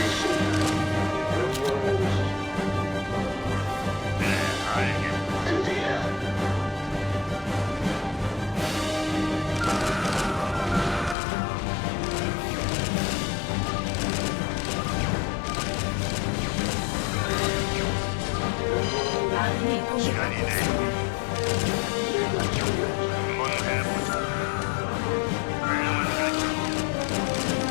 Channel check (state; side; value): drops out; right; at 11.2 s